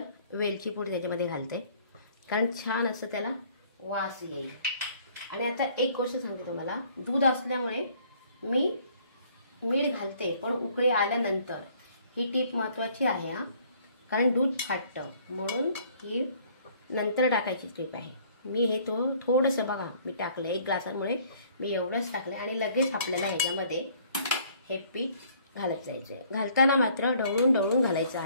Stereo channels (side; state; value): both; inverted; correlation -0.58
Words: वेलची पूड त्याच्यामध्ये घालते, कारण छान असं त्याला वास येईल। आणि आता एक गोष्ट सांगते तुम्हाला, दूध असल्यामुळे मी मीठ घालते, पण उकळी आल्यानंतर। ही टीप महत्त्वाची आहे हा, कारण दूध फाटतं, म्हणून ही नंतर टाकायची टीप आहे। मी हे थोडंसं बघा मी टाकलं 1 ग्लासामुळे मी एवढंच टाकलं आणि लगेच आपल्याला ह्याच्यामध्ये हे पीठ घालत जायचं। घालताना मात्र ढवळून ढवळून घालायचं